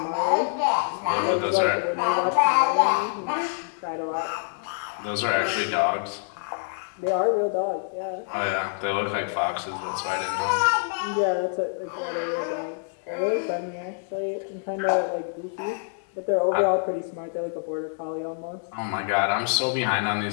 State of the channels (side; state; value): right; silent; 61 dB below the other